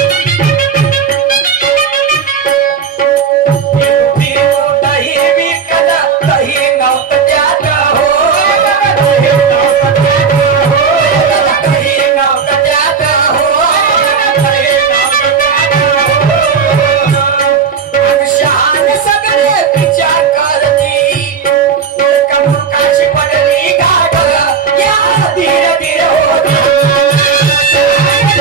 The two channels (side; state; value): left; quieter; 6.2 dB